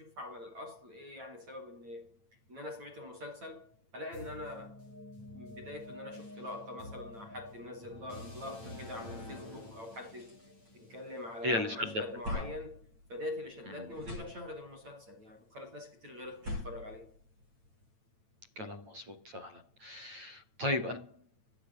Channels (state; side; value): late; left; 8.9 ms